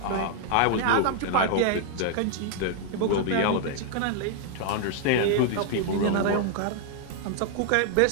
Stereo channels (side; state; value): both; different; correlation 0.00